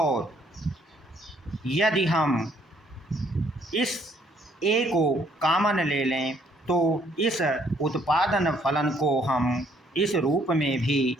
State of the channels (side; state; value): both; normal; correlation 0.66